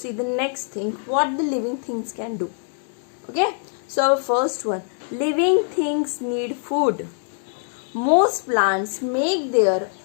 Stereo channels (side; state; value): right; silent; 58 dB below the other